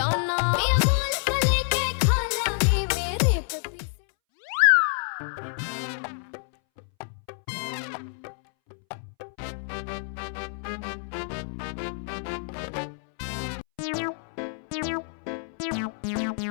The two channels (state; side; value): silent; right; 60 dB below the other